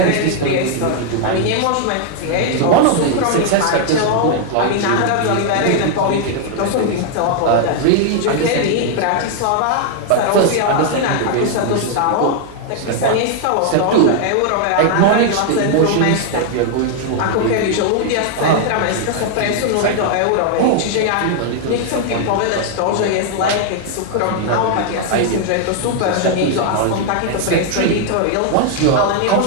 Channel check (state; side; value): different; both; correlation 0.00